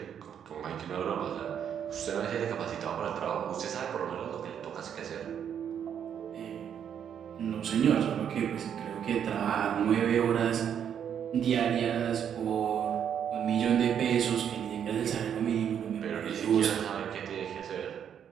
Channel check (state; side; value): quieter; left; 8.6 dB